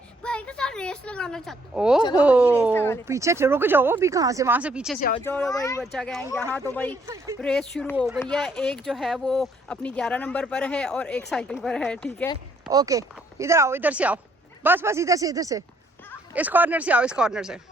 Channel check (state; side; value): normal; both; correlation 0.67